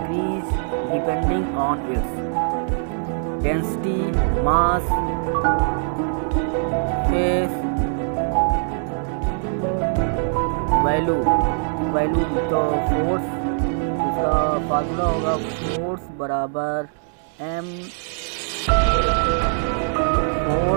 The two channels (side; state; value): left; silent; digital silence